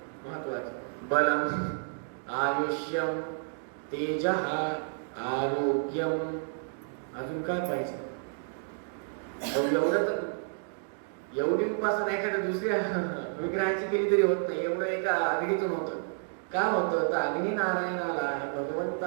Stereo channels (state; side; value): silent; left; digital silence